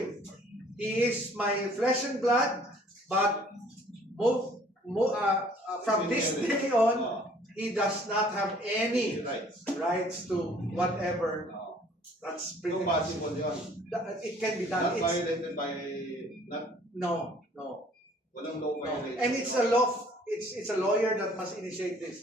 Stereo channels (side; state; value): both; normal; correlation 0.56